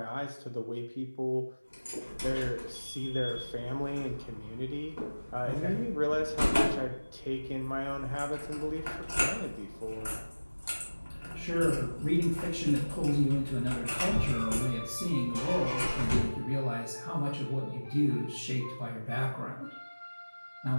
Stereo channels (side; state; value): both; inverted; correlation -1.00